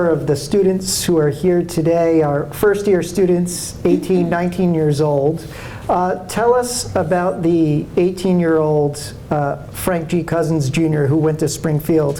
of the students who are here today are first-year students, 18, 19 years old. Tell us about the 18-year-old Frank G. Cousins Jr. who went to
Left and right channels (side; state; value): both; identical; correlation 1.00